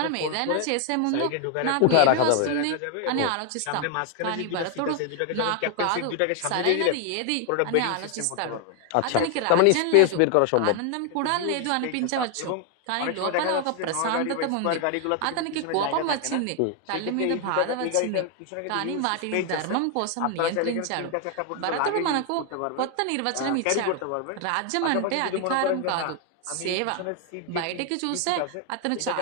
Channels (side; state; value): both; different; correlation 0.00